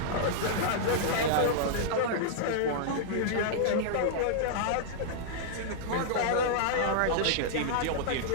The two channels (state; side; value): different; both; correlation -0.01